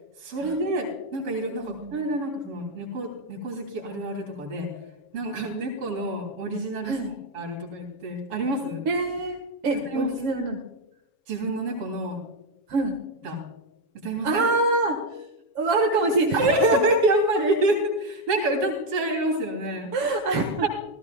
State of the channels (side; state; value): left; late; 7.2 ms